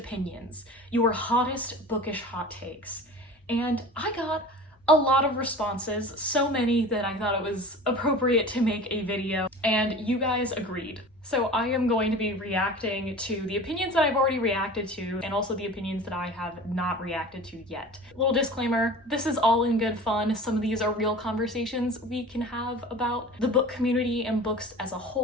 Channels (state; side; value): normal; both; correlation 0.38